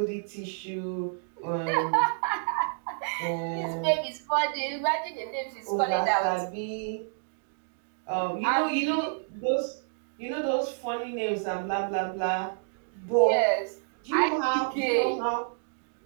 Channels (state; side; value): silent; left; digital silence